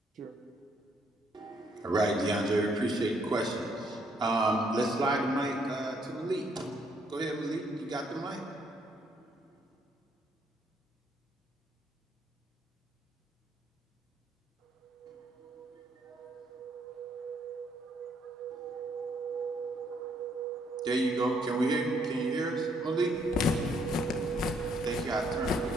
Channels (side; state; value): both; normal; correlation 0.69